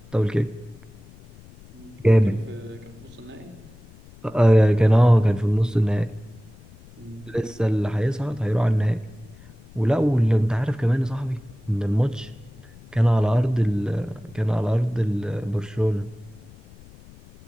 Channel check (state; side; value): noise; left; rumble, 23 dB below the sound